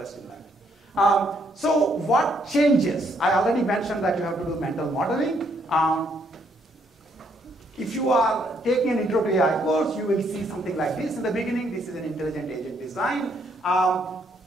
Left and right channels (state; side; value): normal; both; correlation 0.71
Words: in that. So what changes? I already mentioned that you have to do mental modeling. If you are taking an intro to AI course, you will see something like this in the beginning. This is an intelligent agent design.